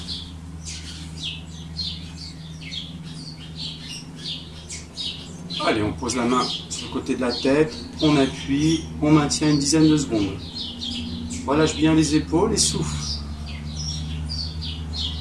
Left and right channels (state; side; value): identical; both; correlation 1.00